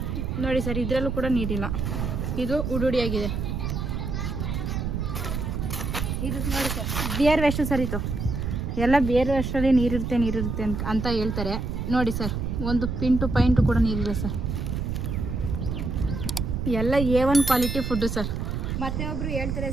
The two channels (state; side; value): noise; right; rumble, 2 dB below the sound